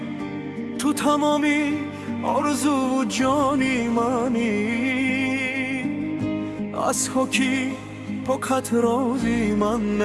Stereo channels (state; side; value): identical; both; correlation 1.00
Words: تو تمامی آرزو و جانی منی. از حکی پاکت رازی من